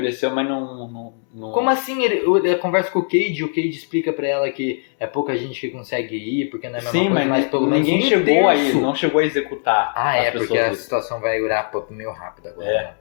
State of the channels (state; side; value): silent; right; digital silence